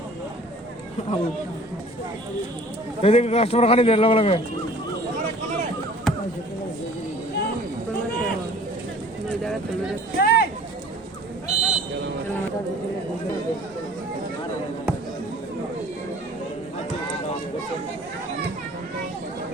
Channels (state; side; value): normal; both; correlation 0.50